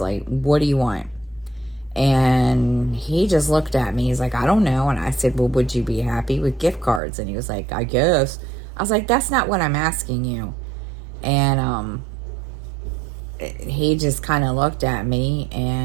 what do you want? And he just looked at me. He's like, I don't know. And I said, well, would you be happy with gift cards? And he was like, I guess. I was like, that's not what I'm asking you. And he just kind of looked at me,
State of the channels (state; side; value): drops out; left; at 7.0 s